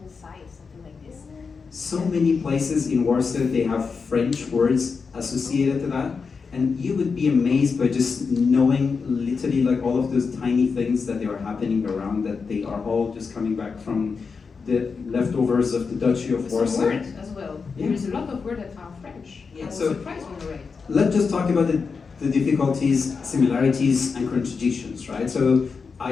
side, something like this. So many places in Warsaw, they have French words associated to that. And you would be amazed by just knowing literally like all of those tiny things that they are happening around, that they are all just coming back from the leftovers of the Duchy of Some Warsaw. words as well. Yeah. There is a lot of words that are French. I was so- surprised when I read. Let's just talk about the difficulties, similarities, and contradictions, right? So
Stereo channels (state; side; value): quieter; right; 5.2 dB